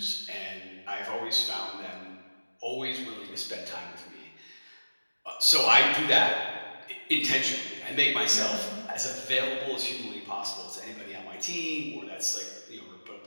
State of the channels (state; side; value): inverted; both; correlation -1.00